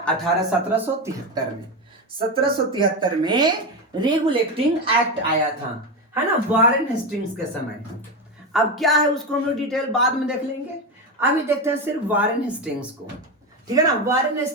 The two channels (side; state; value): both; normal; correlation 0.15